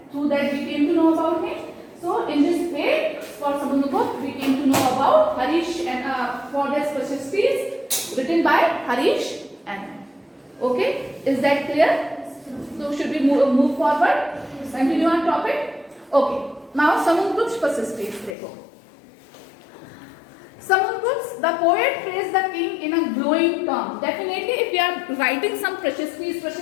through that we came to know about him. So in this way, for Samundragupta we came to know about Harish and for this prashastis written by Harish Anna. Okay, is that clear? So should we move forward? Continue on topic. Okay. Now Samundragupta's prashastis. देखो. Samundragupta, the poet praised the king in a glowing term. Definitely, if you are writing some prashastis,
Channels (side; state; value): right; drops out; at 18.4 s